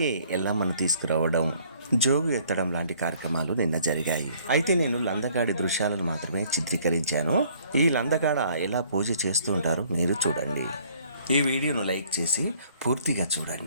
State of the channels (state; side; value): inverted; both; correlation -0.60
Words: ఎల్లమ్మను తీసుకురావడం, జోగు ఎత్తడం లాంటి కార్యక్రమాలు నిన్న జరిగాయి. అయితే నేను లందకాడి దృశ్యాలను మాత్రమే చిత్రీకరించాను. ఈ లందకాడ ఎలా పూజ చేస్తూ ఉంటారో మీరు చూడండి. ఈ వీడియోను లైక్ చేసి పూర్తిగా